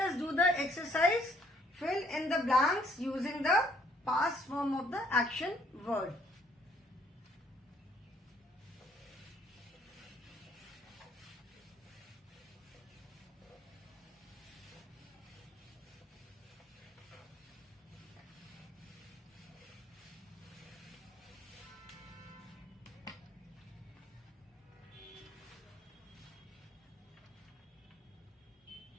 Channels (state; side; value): normal; both; correlation 0.65